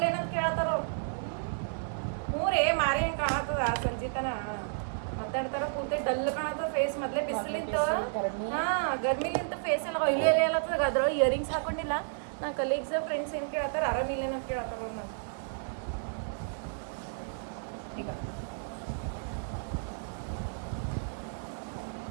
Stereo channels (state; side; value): silent; left; digital silence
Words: ಏನಂತ ಕೇಳ್ತಾರ ಅವ್ರು. ಹ್ಞೂ ರೇ ಮಾರಿ ಹಂಗೆ ಕಾಣತ್ತದ ಸಂಜಿತನ ಮಾತಾಡ್ತಾರ. ಪೂರ್ತಿ ಡಲ್ ಕಾಣತ್ತದ ಫೇಸ್. ಮೊದಲೇ ಬಿಸಿಲಿಂತ ಗರ್ಮಿಲಿಂತ ಫೇಸ್ ಎಲ್ಲ ಆಯಿಲಿ ಎಲೆ ಎಲ್ಲತ್ತದ. ಅದ್ರೊಳಗೆ ಇಯರಿಂಗ್ಸ್ ಹಾಕೊಂಡಿಲ್ಲ. ನನ್ನ ಕಲೀಗ್ಸ್ ಫ್ರೆಂಡ್ಸ್ ಏನು ಕೇಳ್ತಾರ, ಆರಾಮಿಲ್ಲ ಏನಂತ ಕೇಳ್ತಾರ ಅವ್ರು. ನಾವು ಈಗ